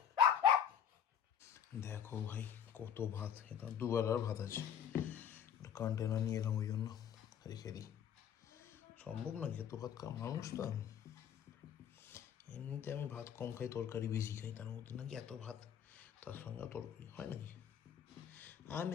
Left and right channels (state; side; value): quieter; right; 8.6 dB